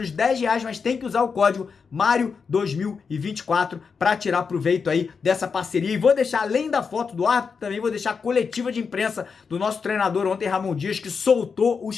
R$ 10, mas tem que usar o código Mário2024 para tirar proveito aí dessa parceria. E vou deixar, além da foto do árbitro, também vou deixar a coletiva de imprensa do nosso treinador ontem, Ramon Dias, que soltou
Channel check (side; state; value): right; quieter; 5.6 dB